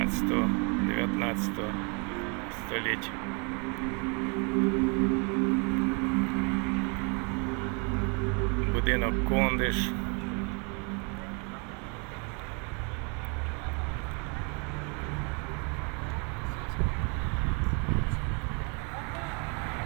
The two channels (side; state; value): left; quieter; 34.4 dB